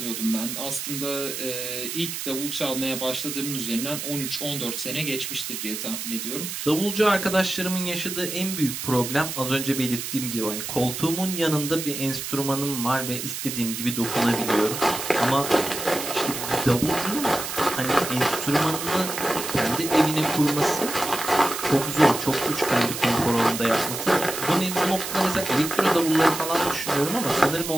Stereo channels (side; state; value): right; noise; hiss, 6 dB below the sound